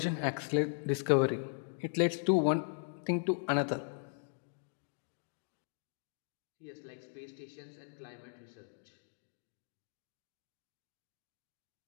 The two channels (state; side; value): silent; right; digital silence